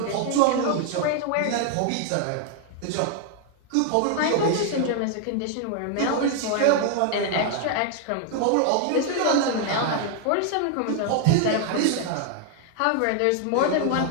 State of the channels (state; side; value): different; both; correlation 0.00